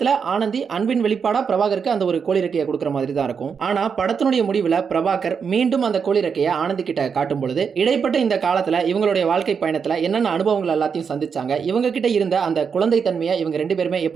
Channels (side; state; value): left; quieter; 6.3 dB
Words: ஆனந்தி அன்பின் வெளிப்பாடா பிரபாகருக்கு அந்த ஒரு கோழி ரெக்கையை கொடுக்கிற மாதிரி தான் இருக்கும். ஆனா படத்தினுடைய முடிவுல பிரபாகர் மீண்டும் அந்த கோழி ரெக்கையை ஆனந்தி கிட்ட காட்டும் பொழுது இடைப்பட்ட இந்த காலத்துல இவங்களுடைய வாழ்க்கை பயணத்துல என்னென்ன அனுபவங்கள் எல்லாத்தையும் சந்திச்சாங்க, இவங்க கிட்ட இருந்த அந்த குழந்தை தன்மையை இவங்க 2 பேருமே